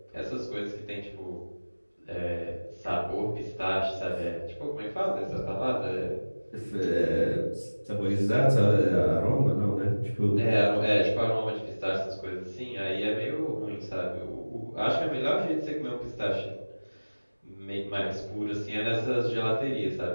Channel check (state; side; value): inverted; both; correlation -1.00